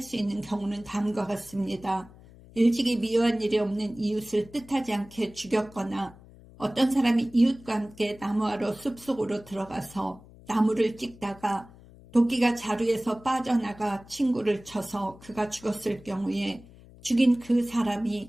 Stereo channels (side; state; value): left; noise; hum, 22 dB below the sound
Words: 수 있는 경우는 다음과 같습니다. 일찍이 미워한 일이 없는 이웃을 뜻하지 않게 죽였거나 어떤 사람이 이웃과 함께 나무하러 숲속으로 들어가서 나무를 찍다가 도끼가 자루에서 빠져나가 친구를 쳐서 그가 죽었을 경우에 죽인 그